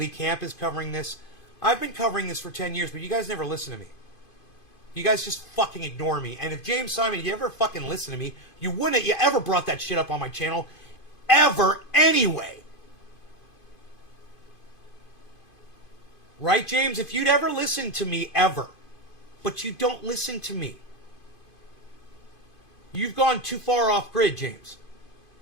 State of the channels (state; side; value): late; right; 2.5 ms